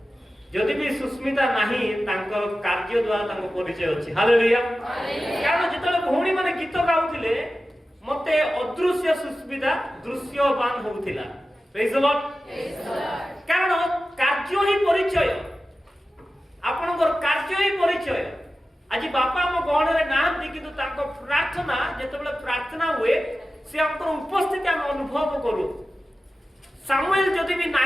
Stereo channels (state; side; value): normal; both; correlation 0.94